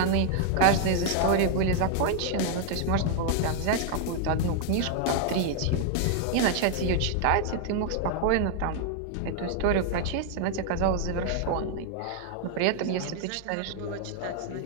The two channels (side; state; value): both; different; correlation 0.00